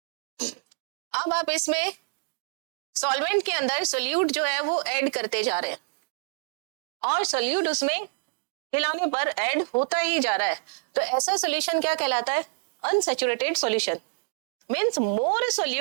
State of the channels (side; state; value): left; silent; digital silence